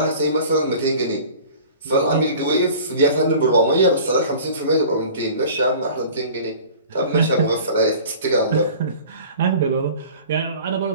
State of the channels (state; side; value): inverted; both; correlation -0.43